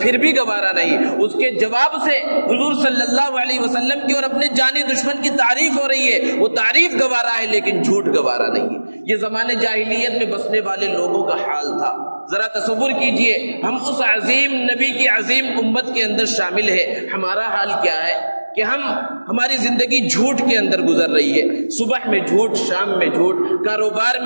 بھی گوارا نہیں۔ اس کے جواب سے حضور صلی اللہ علیہ وسلم کی اور اپنے جانی دشمن کی تعریف ہو رہی ہے، وہ تعریف گوارا ہے لیکن جھوٹ گوارا نہیں ہے۔ یہ زمانے جاہلیت میں بسنے والے لوگوں کا حال تھا۔ ذرا تصور کیجئے ہم اس عظیم نبی کی عظیم امت کے اندر شامل ہے، ہمارا حال کیا ہے کہ ہماری زندگی جھوٹ کے اندر گزر رہی ہے۔ صبح میں جھوٹ، شام میں جھوٹ، کاروبار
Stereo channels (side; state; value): both; inverted; correlation -1.00